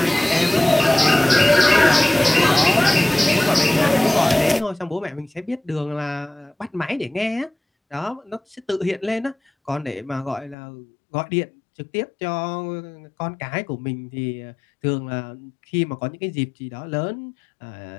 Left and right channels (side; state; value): right; drops out; at 10.6 s